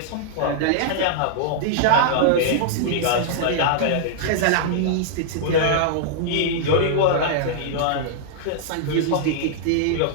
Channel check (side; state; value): both; different; correlation -0.01